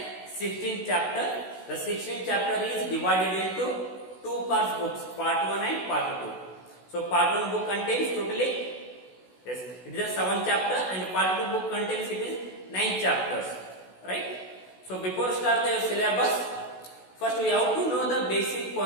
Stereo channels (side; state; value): right; late; 16 ms